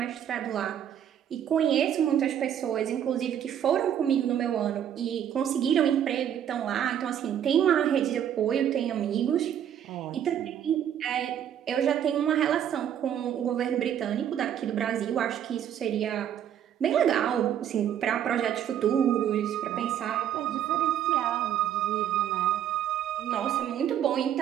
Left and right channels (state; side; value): quieter; left; 9.9 dB